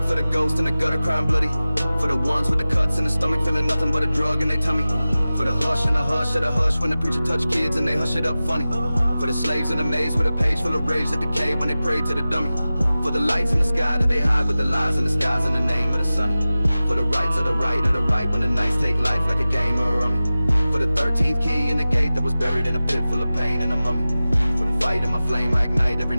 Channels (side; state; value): both; inverted; correlation -0.96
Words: for the ghost in the gutter crying bloody. For the ones with the cuts in the stomach feeling nothing but a drug in their tummy. For the hush and the hush of the hush when the preacher touch kids and they hush it up funny. For the slaves in the maze with a page full of rage that decay when they pray to the dummy. For the lights in the sky that they hide with the lies in the skies in the name of the sun. For the rights of the right when the nights take life like a game or a rummy. For the 13th key in the gate that was buried in a pit full of pain and a mummy. For the fight in my flame I ignite every